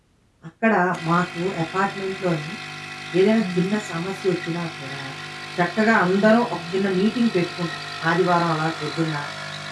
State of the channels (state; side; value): identical; both; correlation 1.00